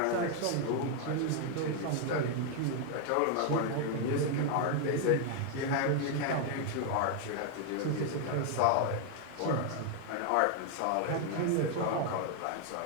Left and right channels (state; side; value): different; both; correlation 0.00